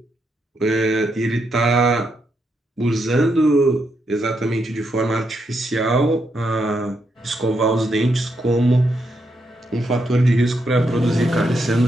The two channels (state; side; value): normal; both; correlation 0.80